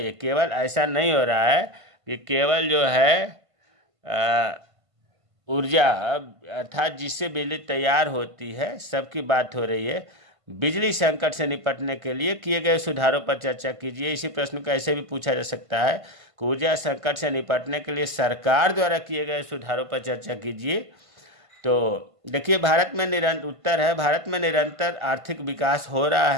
है। केवल ऐसा नहीं हो रहा है कि केवल जो है ऊर्जा अर्थात जिससे बिजली तैयार होती है सबकी बात हो रही है। बिजली संकट से निपटने के लिए किए गए सुधारों पर चर्चा कीजिए। इसी प्रश्न को ऐसे भी पूछा जा सकता है कि ऊर्जा संकट से निपटने के लिए सरकार द्वारा किए गए सुधारों पर चर्चा कीजिए। तो देखिए, उत्तर है भारत में निरंतर आर्थिक विकास हो रहा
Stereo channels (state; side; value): late; left; 1.5 ms